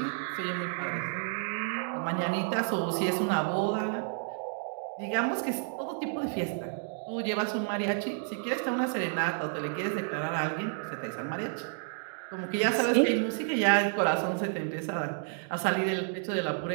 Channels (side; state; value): left; silent; 57 dB below the other